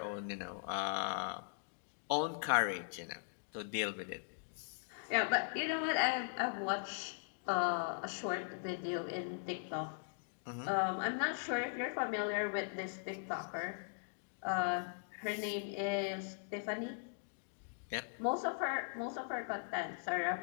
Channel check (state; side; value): silent; right; digital silence